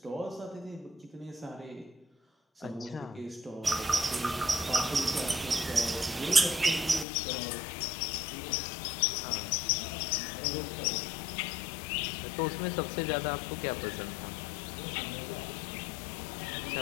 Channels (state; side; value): drops out; right; at 7.1 s